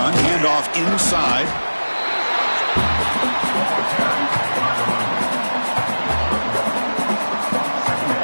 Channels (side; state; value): both; inverted; correlation -1.00